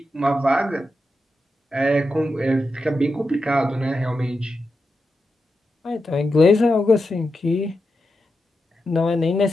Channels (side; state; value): both; normal; correlation 0.88